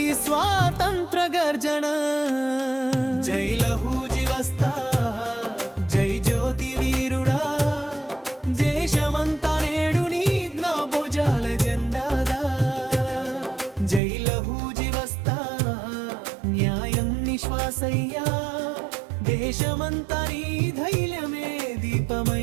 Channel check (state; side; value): drops out; left; at 14.0 s